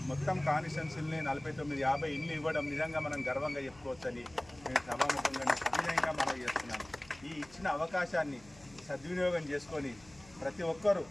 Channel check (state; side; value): noise; left; hum, 24 dB below the sound